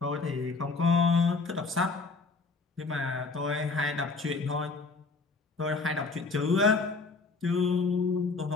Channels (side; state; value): right; quieter; 4.0 dB